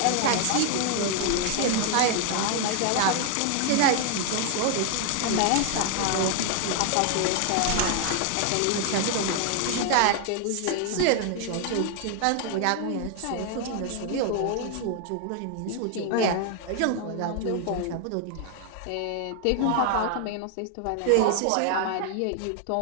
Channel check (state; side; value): different; both; correlation 0.00